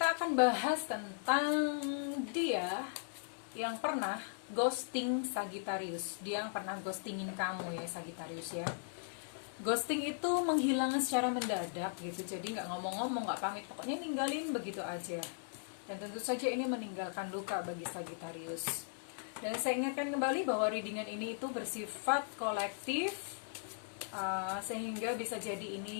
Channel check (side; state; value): right; silent; digital silence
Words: akan bahas tentang dia yang pernah ghosting Sagittarius. Dia yang pernah ghostingin kamu ya, Sagittarius ya. Ghosting itu menghilang secara mendadak gitu. Jadi nggak ngomong-ngomong, nggak pamit, pokoknya ninggalin begitu aja. Dan tentu saja ini meninggalkan luka bagi Sagittarius. Dan saya ingatkan kembali bahwa readingan ini itu bersifat kolektif, sehingga bisa jadi